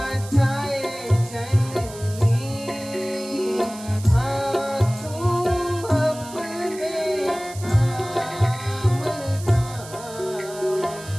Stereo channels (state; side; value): noise; right; hiss, 16 dB below the sound